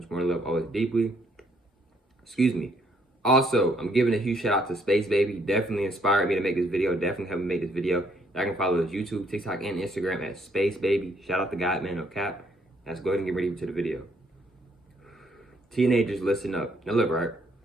more. Love always deeply. Excuse me. Also, I'm giving a huge shout out to Space Baby. Definitely inspired me to make this video. Definitely helped me make this video. I can follow his YouTube, TikTok, and Instagram at Space Baby. Shout out to God, man, no cap. Let's go ahead and get ready to the video. Teenagers, listen up. Now look, right?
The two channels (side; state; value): both; normal; correlation 0.68